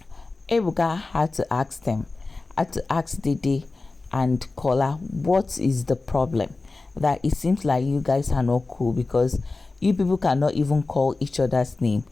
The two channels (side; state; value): right; quieter; 3.5 dB